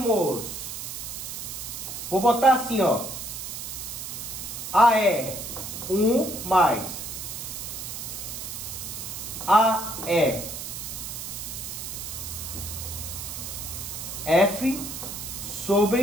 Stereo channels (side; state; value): right; noise; hiss, 7 dB below the sound